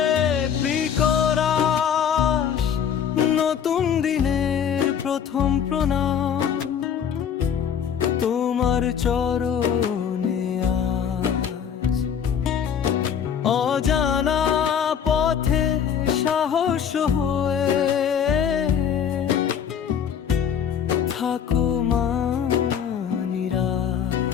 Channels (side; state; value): right; quieter; 8.0 dB